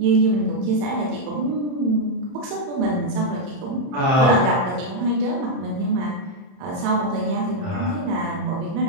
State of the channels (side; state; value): left; late; 31 ms